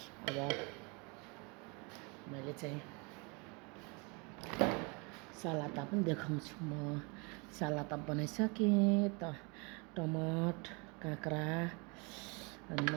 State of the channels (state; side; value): quieter; left; 30.7 dB